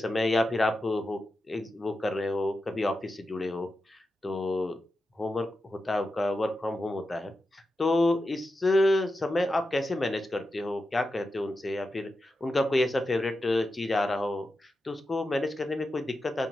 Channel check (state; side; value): normal; both; correlation 0.90